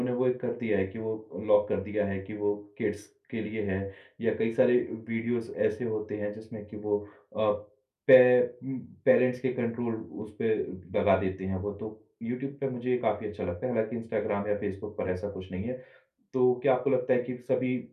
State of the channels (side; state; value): both; identical; correlation 1.00